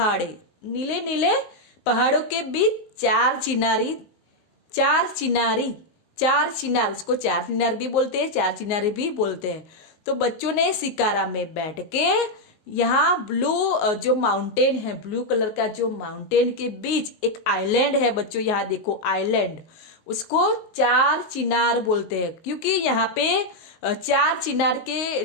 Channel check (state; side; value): late; right; 19 ms